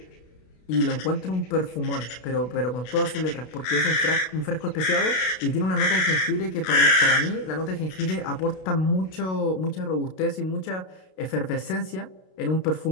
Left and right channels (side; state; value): right; late; 32 ms